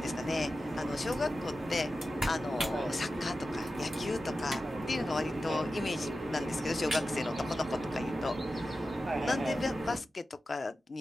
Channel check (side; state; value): both; normal; correlation 0.93